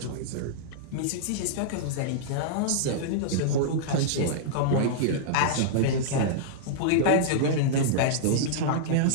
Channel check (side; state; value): both; different; correlation -0.02